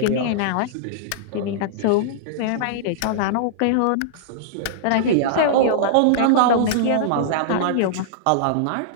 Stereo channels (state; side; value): different; both; correlation -0.02